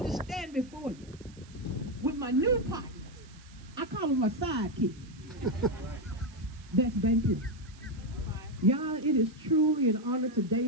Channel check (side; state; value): right; noise; hiss, 25 dB below the sound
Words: to stand before you with my new partners. I call them my sidekick. That's Bank Plus. Y'all, it is truly an honor